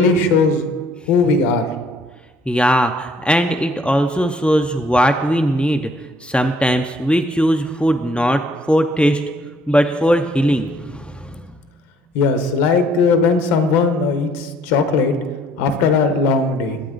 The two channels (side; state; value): both; normal; correlation 0.61